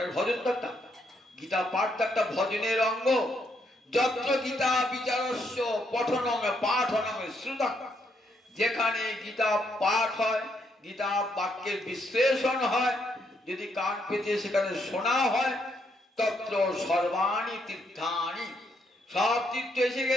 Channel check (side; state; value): both; normal; correlation 0.75